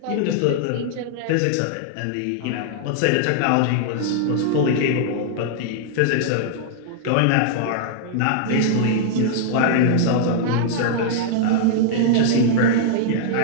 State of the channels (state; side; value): different; both; correlation -0.01